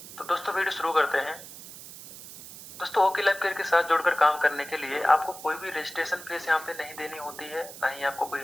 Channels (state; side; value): noise; right; hiss, 15 dB below the sound